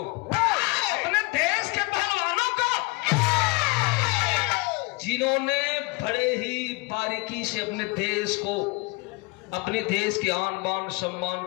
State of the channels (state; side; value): quieter; right; 26.7 dB